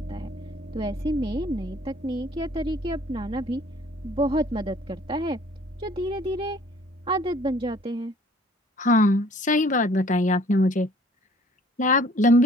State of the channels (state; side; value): normal; both; correlation 0.55